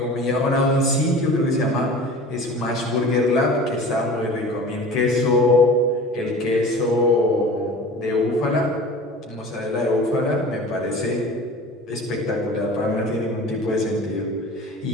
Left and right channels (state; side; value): normal; both; correlation 0.39